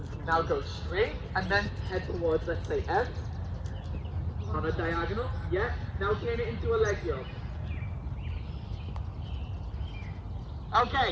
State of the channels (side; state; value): both; identical; correlation 1.00